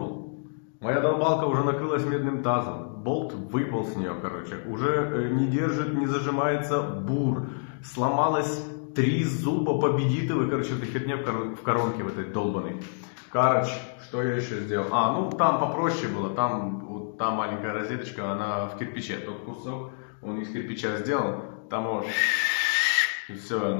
Моя долбалка уже накрылась медным тазом. Болт выпал с нее, короче. Уже не держит, не зажимается бур. Сломалось 3 зуба победитовых, короче, эта херня в коронке в этой долбаной. Короче, что я еще сделал? Ну там попроще было. Там, вот, та маленькая розеточка, она в кирпиче. Тот кусок, он из кирпича сделал. Там вот... И все,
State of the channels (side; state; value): right; silent; digital silence